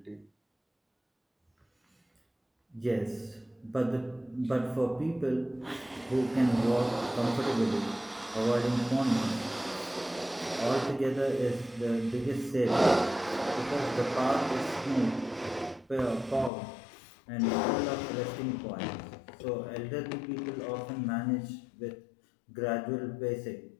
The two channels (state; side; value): drops out; right; at 16.5 s